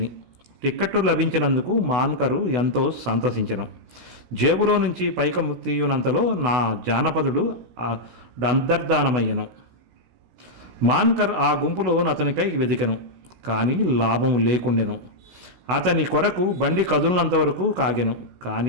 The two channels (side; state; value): left; late; 16 ms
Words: టిక్కెట్టు లభించినందుకు మాన్కరు ఎంతో సంతసించెను. జేబులో నుంచి పైకము తీయునంతలో నా జానపదుడు అంతర్ధానమయ్యను. మాన్కర్ ఆ గుంపులో అతనికై వెదికెను. కానీ లాభము లేకుండెను. అతని కొరకు బండి కదులినంతవరకు కాగెను.